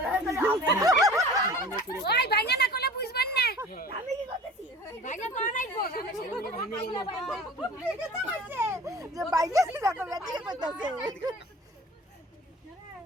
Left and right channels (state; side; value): normal; both; correlation 0.42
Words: না ওই ভাঙা না করলে বুঝবেন না আমি কি করতেছি ভাঙা করা নাই গো আমি সেটা ভাঙিলা ভাঙা হইছে যে ভাঙিস রে কাও বেটি কইতাছে